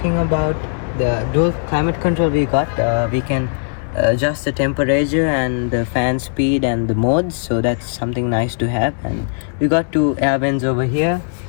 about the dual climate control we got, we can adjust the temperature and the fan speed and the modes, so that's something nice to have. And we got 2 air vents over here,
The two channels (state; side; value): silent; right; digital silence